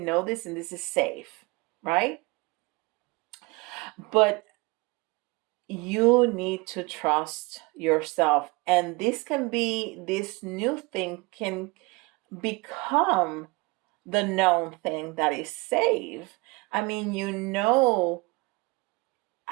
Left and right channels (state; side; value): quieter; left; 25.3 dB